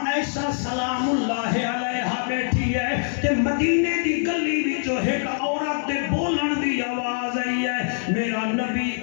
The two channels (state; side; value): silent; right; digital silence